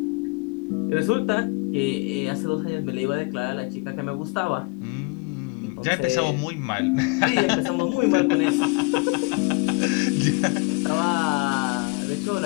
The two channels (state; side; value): quieter; right; 29.5 dB